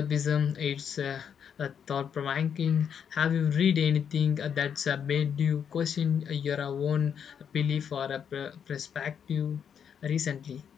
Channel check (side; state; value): right; quieter; 7.8 dB